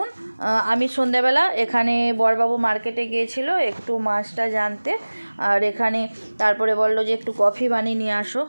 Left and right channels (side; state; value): both; inverted; correlation -1.00